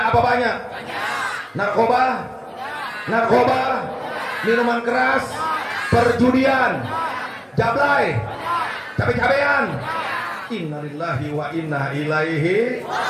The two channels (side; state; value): both; identical; correlation 1.00